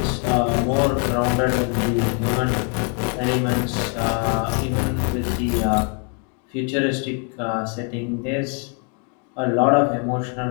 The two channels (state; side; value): quieter; right; 37.9 dB